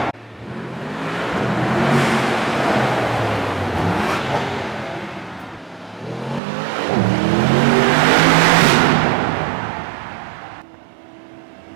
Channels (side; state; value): left; drops out; at 6.4 s